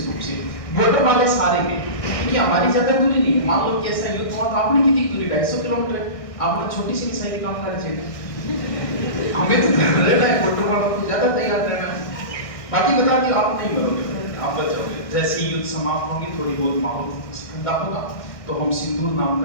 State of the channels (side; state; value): right; late; 1.6 ms